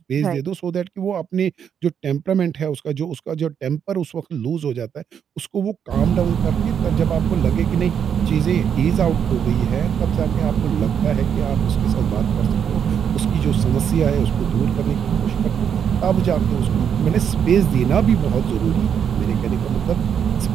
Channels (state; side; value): quieter; left; 8.0 dB